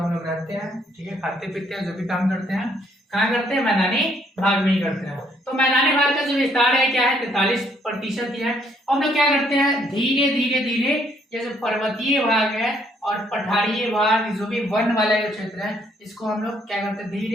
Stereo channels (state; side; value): normal; both; correlation 0.68